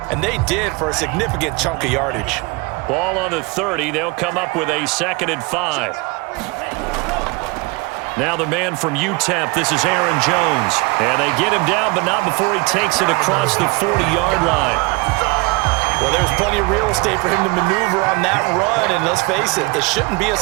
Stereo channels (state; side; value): quieter; left; 26.0 dB